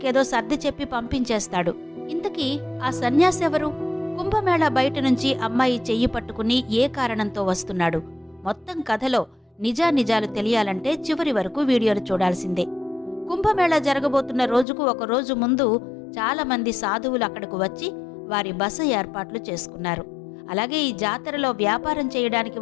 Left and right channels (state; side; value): drops out; right; at 14.7 s